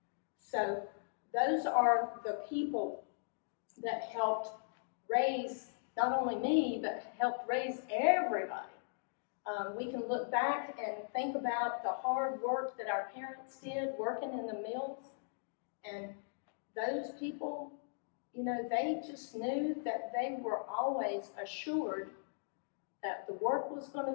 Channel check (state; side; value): silent; right; digital silence